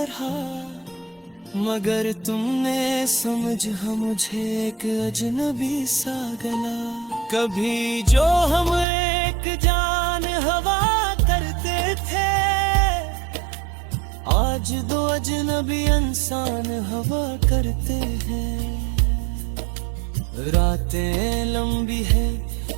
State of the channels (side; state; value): left; drops out; at 8.8 s